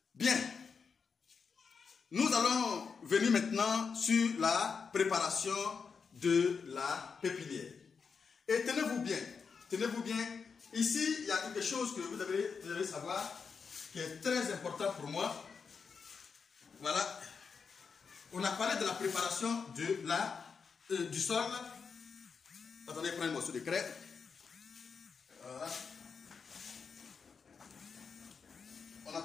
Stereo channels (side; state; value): right; quieter; 5.6 dB